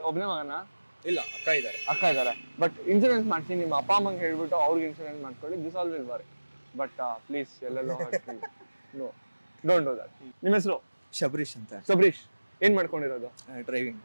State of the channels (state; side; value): inverted; both; correlation -1.00